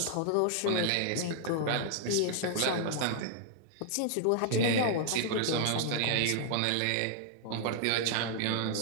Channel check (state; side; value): different; both; correlation -0.01